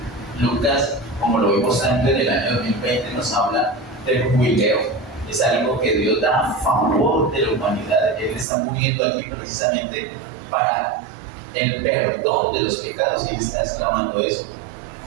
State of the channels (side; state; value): left; drops out; at 8.5 s